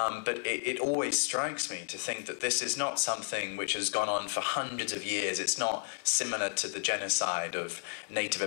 it always strikes me to think that this is not something which has gone on for hundreds of years. It's not similar to the genocide of Native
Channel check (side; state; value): right; silent; digital silence